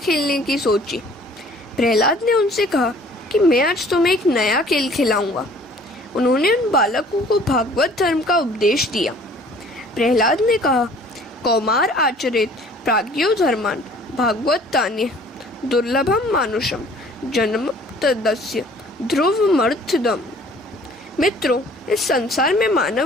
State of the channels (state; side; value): normal; both; correlation 0.53